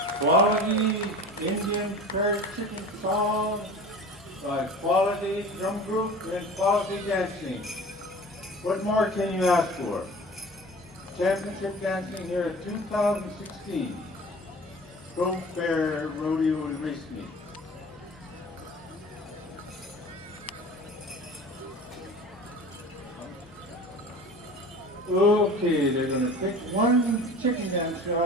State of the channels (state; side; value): normal; both; correlation 0.39